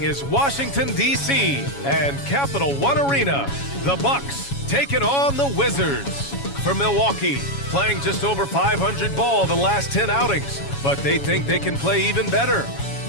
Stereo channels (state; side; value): late; right; 7.2 ms